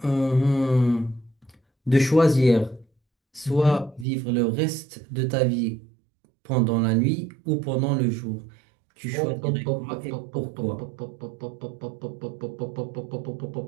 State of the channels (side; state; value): left; drops out; at 4.0 s